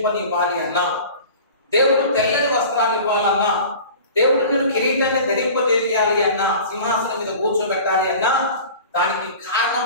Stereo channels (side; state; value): both; inverted; correlation -0.40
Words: అన్నా, దేవుడు తెల్లని వస్త్రాలు ఇవ్వాలన్నా, దేవుడు నేను కిరీటాన్ని ధరింపజేయాలి అన్నా, సింహాసనం మీద కూర్చోబెట్టాలి అన్నా, దానికి